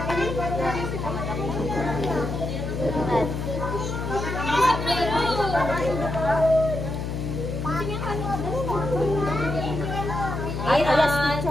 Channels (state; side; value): noise; left; hum, 4 dB below the sound